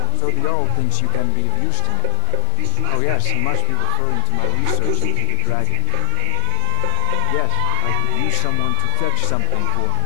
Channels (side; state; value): both; different; correlation -0.01